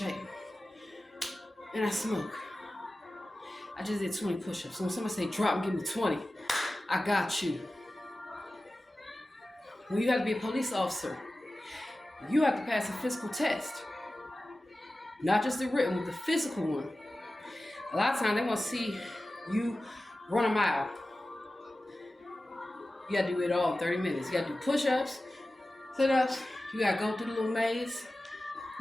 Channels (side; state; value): both; normal; correlation 0.95